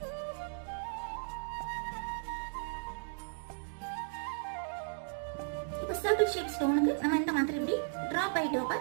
இப்போ சர்க்கிள் ஷேப் ஸ்டோனுக்கு நம்ம இந்த மாதிரி இப்படி ட்ராப் பை ட்ராப்பா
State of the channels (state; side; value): silent; left; digital silence